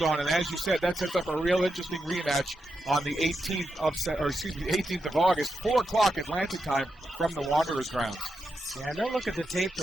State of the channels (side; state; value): both; normal; correlation 0.86